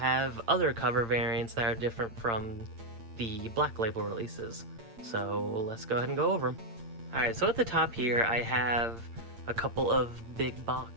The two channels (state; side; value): late; left; 8.8 ms